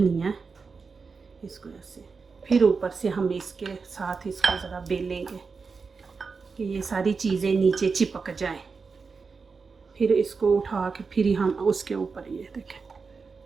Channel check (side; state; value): left; quieter; 4.9 dB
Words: इसको ऐसे, फिर ऊपर से हम इसके साथ इसको ज़रा बेलेंगे कि ये सारी चीज़ें नीचे चिपक जाएं। फिर इसको उठा के फिर हम उसके ऊपर, ये देखें